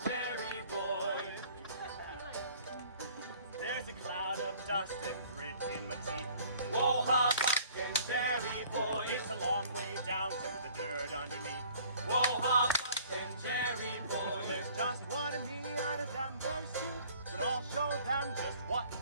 Jerry Boy. There's a cloud of dust and grit in my teeth. Whoa, how Buck and Jerry Boy. It's a long way down to the dirt underneath. Whoa, how Buck and Jerry Boy. There's just one of me out of them, there's two. But I'll show them just what to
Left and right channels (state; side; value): inverted; both; correlation -0.53